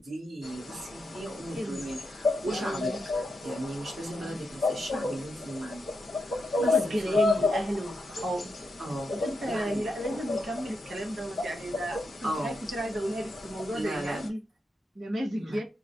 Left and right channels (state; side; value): normal; both; correlation 0.85